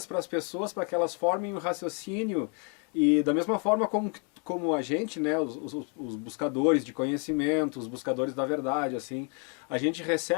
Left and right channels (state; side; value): quieter; right; 38.3 dB